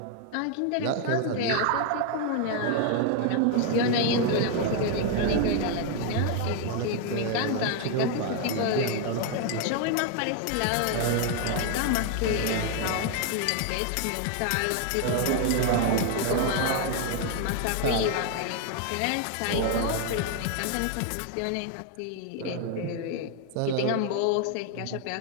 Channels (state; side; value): different; both; correlation 0.00